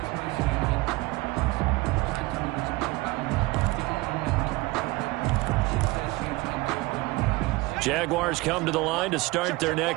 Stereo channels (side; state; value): left; quieter; 21.7 dB